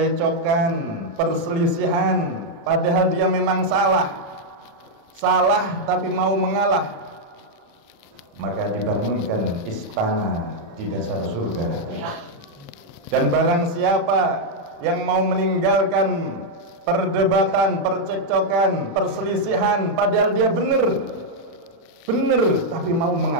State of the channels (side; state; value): left; late; 36 ms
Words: perselisihan, padahal dia memang salah tapi mau mengalah, maka dibangunkan istana di dasar surga. Dan barang siapa yang mau meninggalkan perdebatan, percekcokan, perselisihan, padahal dia benar tapi mau